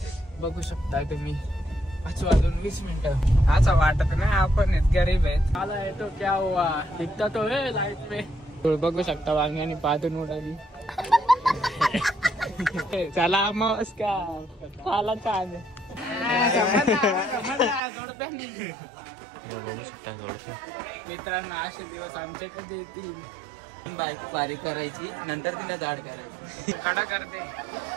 बघू शकताय तुम्ही. 5:20 असं वाटत नाही आपण गरीब आहेत. आला येतो क्या हुआ दिखता तो है लाइट में. बघू शकता वांग्यानी पादून उडाली. चला नमस्कार आला छान. मित्रांनो असे दिवस आमचे कधी येतील. बायको बारीक करायची नंतर तिला जाड करायची. कडा करते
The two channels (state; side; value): drops out; left; at 17.8 s